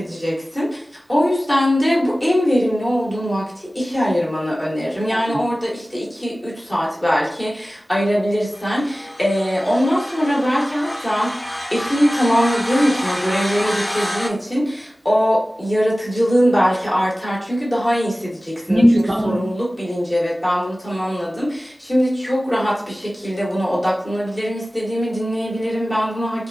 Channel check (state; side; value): normal; both; correlation 0.97